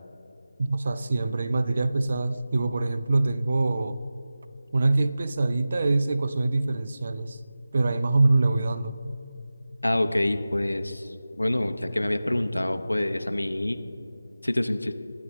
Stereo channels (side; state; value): both; inverted; correlation -0.96